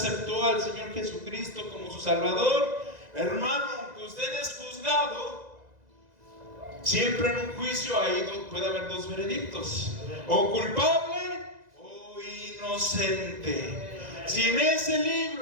al Señor Jesucristo como su Salvador, hermano, aunque usted es juzgado, siempre en un juicio puede haber dos veredictos: o culpable o inocente. Si en ese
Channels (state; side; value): late; left; 2.0 ms